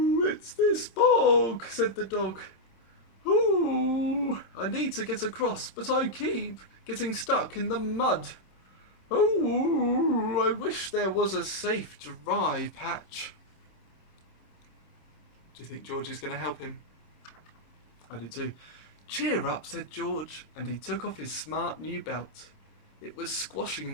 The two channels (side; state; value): right; late; 26 ms